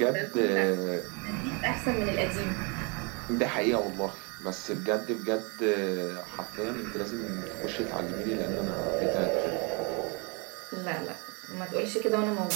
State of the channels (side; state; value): left; quieter; 32.2 dB